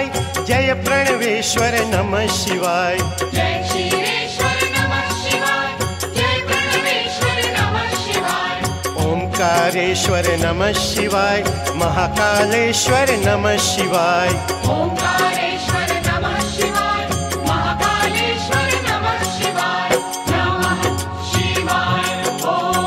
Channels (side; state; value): both; identical; correlation 1.00